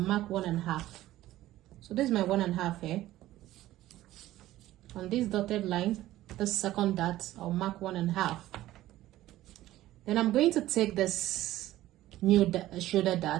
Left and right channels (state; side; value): quieter; left; 15.1 dB